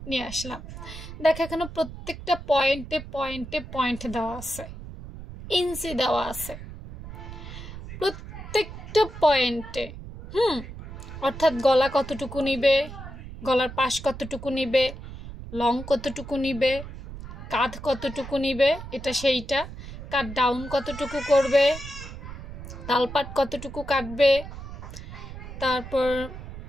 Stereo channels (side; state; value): right; noise; rumble, 12 dB below the sound